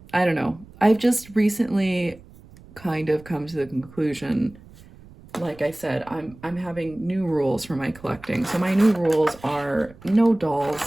I don't know. I've just recently kind of come to the conclusion, like I said, I'm having new rules for my collecting. So my new rules are no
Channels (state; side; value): noise; right; rumble, 22 dB below the sound